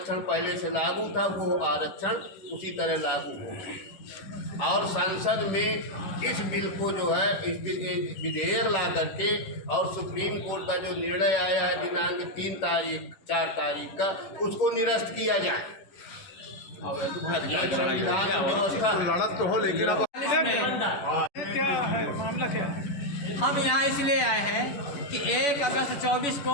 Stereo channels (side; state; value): right; late; 10 ms